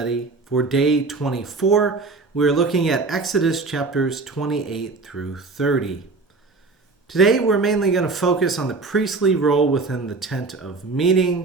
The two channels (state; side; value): quieter; left; 3.9 dB